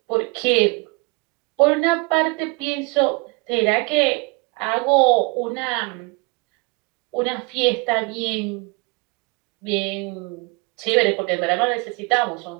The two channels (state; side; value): quieter; left; 29.3 dB